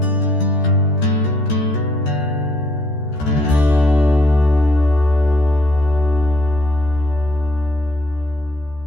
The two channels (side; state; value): right; late; 14 ms